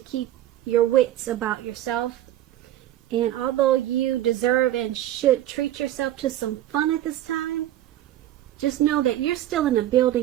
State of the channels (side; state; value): left; quieter; 13.1 dB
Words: your wits about yourself. And although you deserve and should treat yourself to some fun at this time, just know that you're still in the